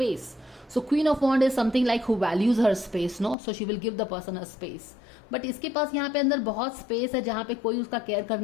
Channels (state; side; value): drops out; right; at 3.4 s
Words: So queen of wand is something like who values her space, no, so she will give the person a space. But इसके पास यहाँ पे अंदर बहुत स्पेस है जहाँ पे कोई उसका केयर